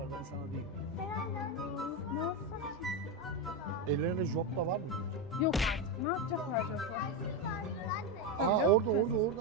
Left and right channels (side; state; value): both; normal; correlation 0.11